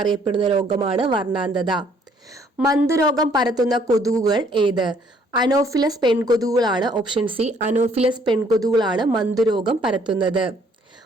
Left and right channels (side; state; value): both; normal; correlation 0.63